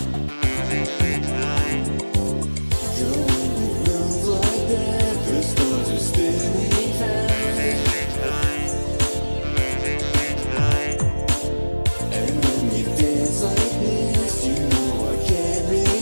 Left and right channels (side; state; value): both; inverted; correlation -1.00